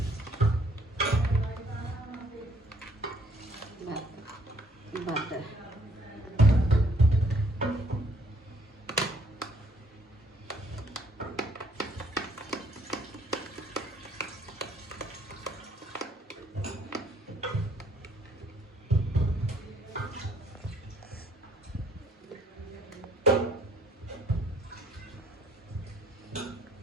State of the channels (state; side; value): normal; both; correlation 0.63